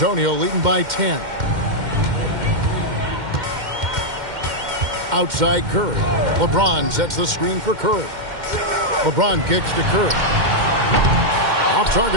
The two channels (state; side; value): late; left; 2.1 ms